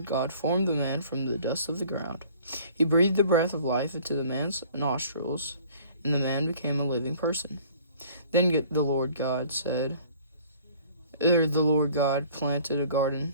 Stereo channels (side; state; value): both; inverted; correlation -0.52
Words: God formed the man from the dust of the ground. He breathed the breath of life into the man's nostrils, and the man became a living person. Then the Lord God planted a